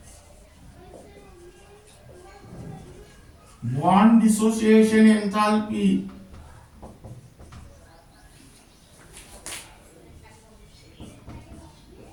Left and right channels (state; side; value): identical; both; correlation 1.00